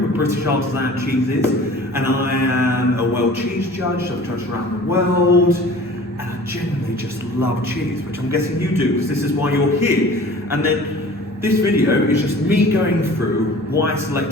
with British artisan cheeses. And I am a world cheese judge. I've judged around the world, and I genuinely just love cheese, which I'm guessing you do, because this is why you're here. And then this video is just me going through why I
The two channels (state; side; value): normal; both; correlation 0.44